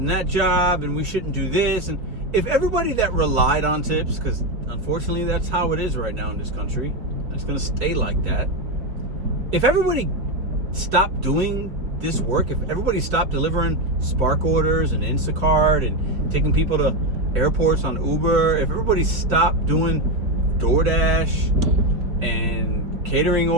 that job, and we shouldn't do this. And if everybody that relied on tips, because unfortunately that's how it is right now in this country, and it's going to stay like that. If everybody stopped doing this work, if everybody stopped delivering Spark orders and Instacart and taking people to airports on Uber, if everybody stopped doing DoorDash and catering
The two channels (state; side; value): late; left; 4.4 ms